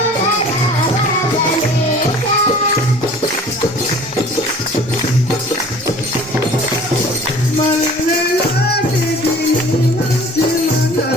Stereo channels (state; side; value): normal; both; correlation 0.47